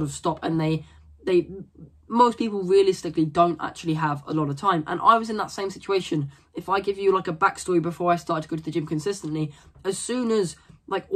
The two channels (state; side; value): identical; both; correlation 1.00